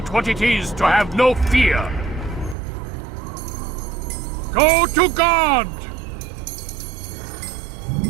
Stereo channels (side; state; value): left; drops out; at 2.6 s